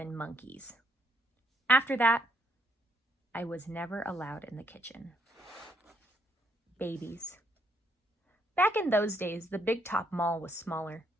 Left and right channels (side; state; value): both; normal; correlation 0.72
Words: monkeys. After that, I was never allowed in the kitchen. Babies. Back in those days, the Big Top Mall was smaller.